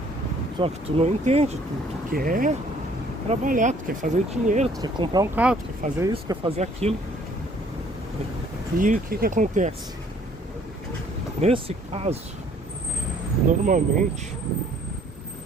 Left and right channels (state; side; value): normal; both; correlation 0.59